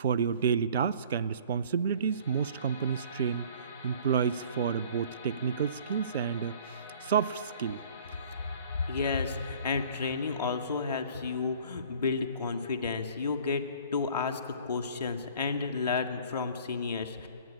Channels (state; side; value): inverted; both; correlation -0.50